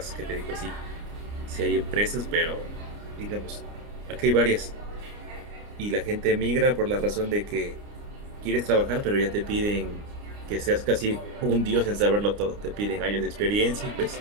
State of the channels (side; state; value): left; late; 29 ms